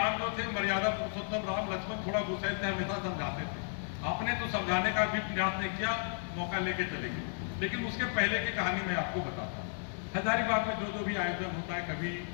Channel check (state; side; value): silent; right; 55 dB below the other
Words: जो थे, मर्यादा पुरुषोत्तम राम, लक्ष्मण थोड़ा गुस्से से हमेशा समझाते थे। आपने तो समझाने का भी प्रयास नहीं किया, मौका लेके चले गए। लेकिन उसके पहले की कहानी मैं आपको बताता हूँ। हजारीबाग में जो भी आयोजन होता है, कभी